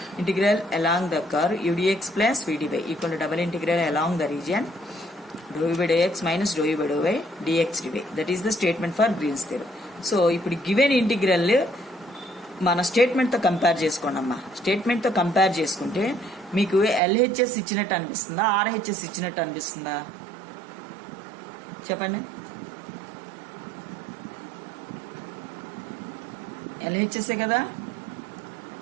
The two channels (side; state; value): left; drops out; at 17.0 s